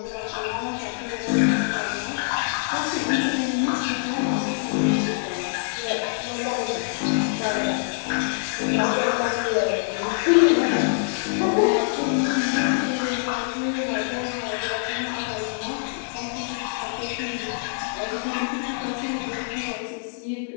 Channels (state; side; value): silent; right; digital silence